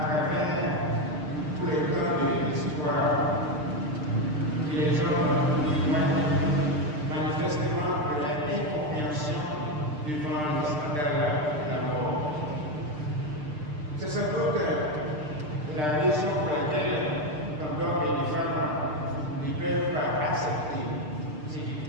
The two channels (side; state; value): left; late; 6.7 ms